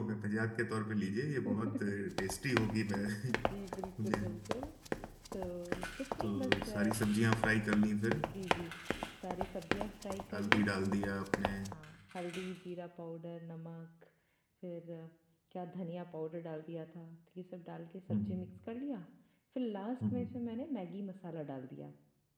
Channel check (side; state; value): both; identical; correlation 1.00